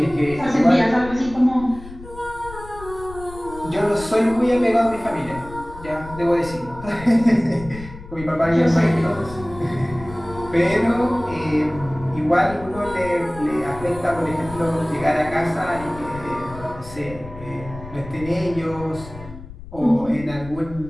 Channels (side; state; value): left; noise; rumble, 15 dB below the sound